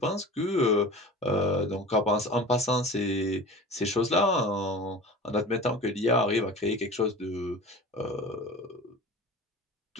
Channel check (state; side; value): normal; both; correlation 0.37